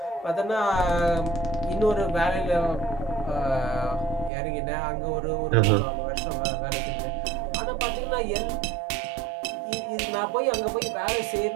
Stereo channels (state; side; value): drops out; left; at 4.3 s